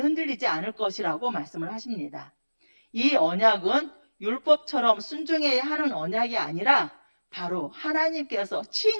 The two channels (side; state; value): both; inverted; correlation -1.00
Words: 않을 것이라고 말씀을 하십니다. 이 언약은 율법처럼 순종해야 하는 언약이 아니라 바로 하나님께서